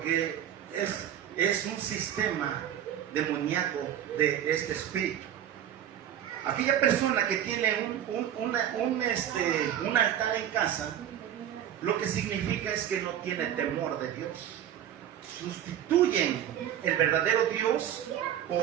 es un sistema demoníaco de este espíritu. Aquella persona que tiene un altar en casa, lo que significa es que no tiene temor de Dios. Sustituyen el verdadero Dios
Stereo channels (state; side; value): quieter; left; 10.4 dB